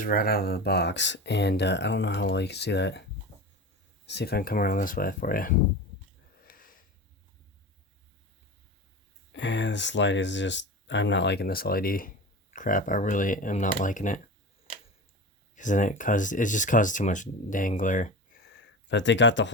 right out of the box, and I don't know how well you can see that. Let's see if I can come around this way for you. And this light is just, I'm not liking this LED crap. I really am not liking it, because then it just causes too much dang glare. But they got the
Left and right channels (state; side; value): normal; both; correlation 0.29